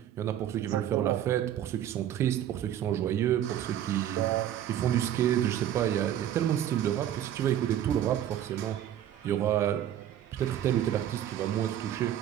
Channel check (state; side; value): quieter; left; 11.1 dB